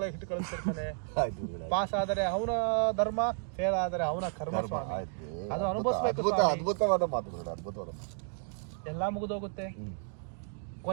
ಇಟ್ಟು ಕಳಿಸ್ತಿರ್ತಾನೆ. ಪಾಸ್ ಆದರೆ ಅವನ ಧರ್ಮ, ಫೇಲ್ ಆದರೆ ಅವನ ಕರ್ಮ ಸ್ವಾಮಿ. ಅದು ಅನುಭವಿಸ್ಬೇಕು. ಅದ್ಭುತವಾದ ಮಾತು, ಅದ್ಭುತವಾದ. ಎಲ್ಲ ಮುಗಿದೋಗುತ್ತೆ.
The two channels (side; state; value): left; silent; 56 dB below the other